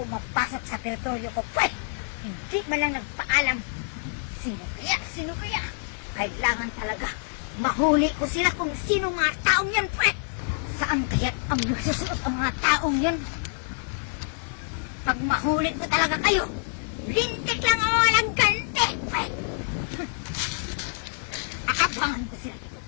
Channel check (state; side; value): silent; right; digital silence